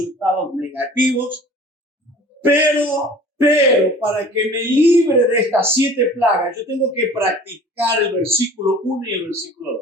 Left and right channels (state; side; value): normal; both; correlation 0.46